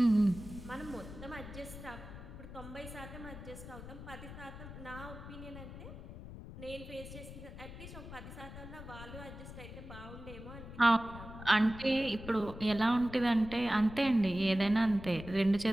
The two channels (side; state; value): left; noise; rumble, 12 dB below the sound